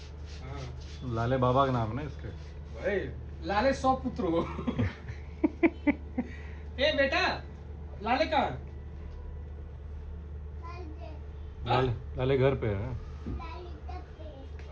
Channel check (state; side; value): identical; both; correlation 1.00